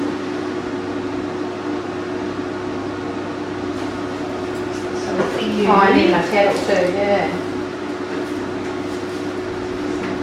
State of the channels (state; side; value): identical; both; correlation 1.00